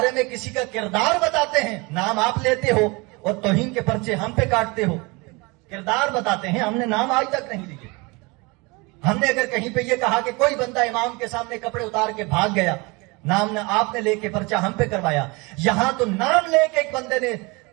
میں کسی کا کردار بتاتے ہیں، نام آپ لیتے ہو اور توہین کے پرچے ہم پہ کاٹتے ہو۔ کردار بتاتے ہیں، ہم نے نام آج تک نہیں لیے۔ ہم نے اگر کہیں پہ یہ کہا کہ کوئی بندہ امام کے سامنے کپڑے اتار کے بھاگ گیا، نام نہ آپ نے لے کے پرچہ ہم پہ کروایا، یہاں تو نام لے کے ایک بندے نے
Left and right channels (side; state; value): left; quieter; 26.7 dB